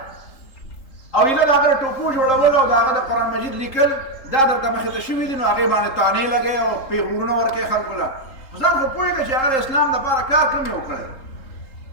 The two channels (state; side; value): late; right; 3.8 ms